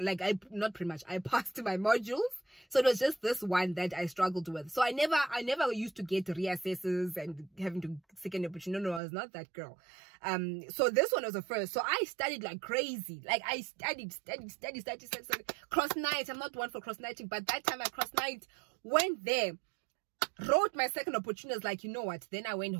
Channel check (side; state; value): left; drops out; at 9.0 s